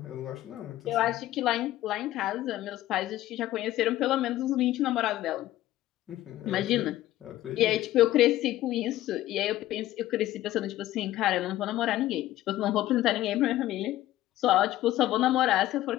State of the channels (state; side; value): quieter; right; 14.8 dB